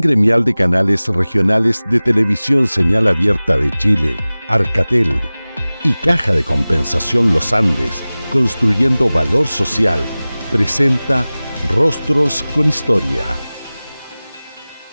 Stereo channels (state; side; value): inverted; both; correlation -0.98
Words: Gremial de Canales Regionales de Televisión Señal Abierta de Chile, Arcatel, y Caja de Compensación Los Andes, construyendo valor social, presenta Rostros con Historia.